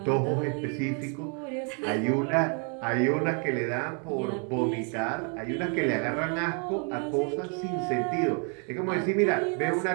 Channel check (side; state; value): left; quieter; 38.7 dB